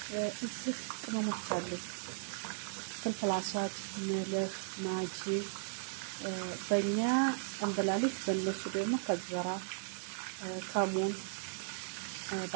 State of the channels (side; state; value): left; silent; digital silence